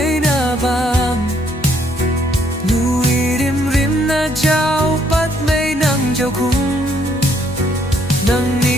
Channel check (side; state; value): both; normal; correlation 0.68